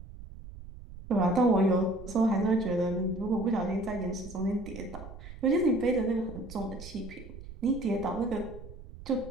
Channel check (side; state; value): right; noise; rumble, 14 dB below the sound